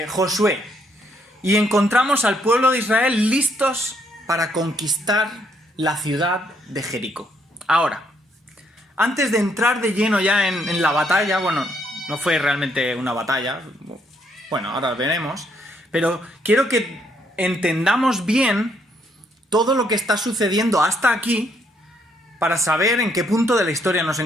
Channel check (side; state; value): both; normal; correlation 0.71